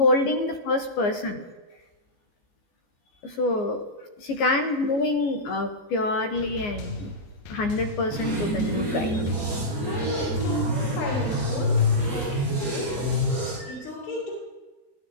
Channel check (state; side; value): late; right; 14 ms